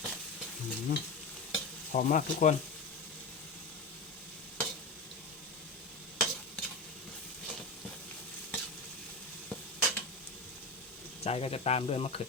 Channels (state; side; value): quieter; right; 3.1 dB